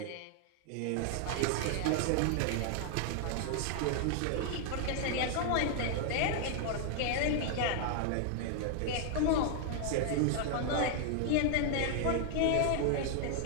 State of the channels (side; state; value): both; different; correlation 0.00